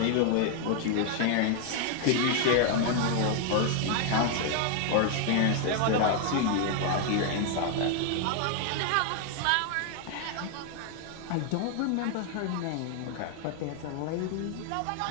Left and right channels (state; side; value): different; both; correlation 0.00